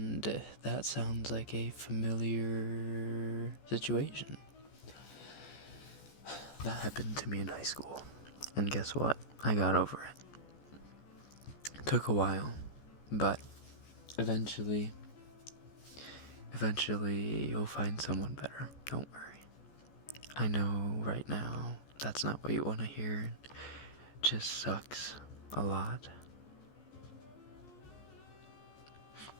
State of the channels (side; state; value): right; late; 14 ms